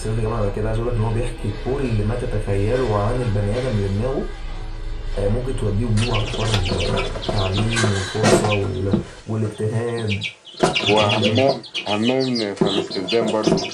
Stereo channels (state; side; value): identical; both; correlation 1.00